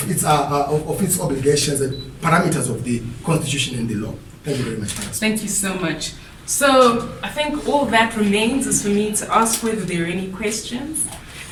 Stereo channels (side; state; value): both; identical; correlation 1.00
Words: its obligations and parameters of the Constitution and the law. Thank you very much. Thank you so much. So I think all that remains is for me to ask whether there are any questions.